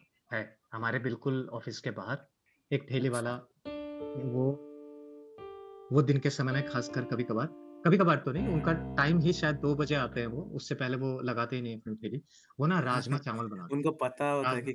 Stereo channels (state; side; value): identical; both; correlation 1.00